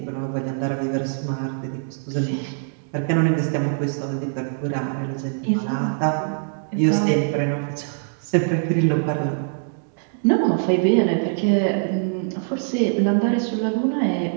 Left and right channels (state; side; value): silent; left; digital silence